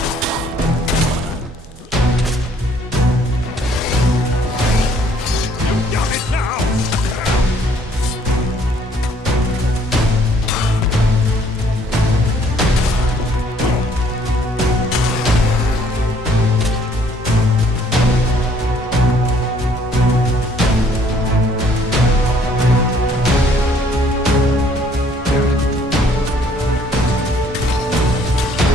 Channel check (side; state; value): both; normal; correlation 0.62